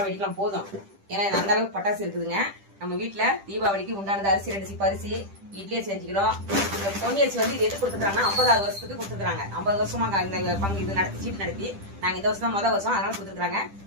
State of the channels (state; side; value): late; left; 10 ms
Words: வெடிக்கலாம் போதும். ஏன்னா அந்த அளவுக்கு பட்டாசு இருக்குதுங்க. நம்ம வீட்டுல தீபாவளிக்கு உண்டானது அரிசி 2 சீப்பு அரிசி, இட்லி செஞ்சுக்கிறோம். இந்த பொன்னியரிசி வந்து இது எது கொடுத்துருக்காங்கன்னா 50வது வருஷத்துக்கு கொடுத்துருக்காங்க. 50 வருஷமா இந்த பங்கு இது நடத்தி சீட்டு நடத்தி நாங்க இந்த வருஷம் தான் முதல் வருஷம், அதனால கொடுத்துருக்காங்க.